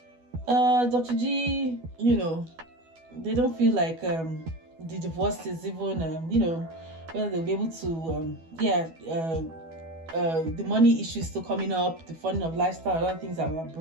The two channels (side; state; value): left; late; 12 ms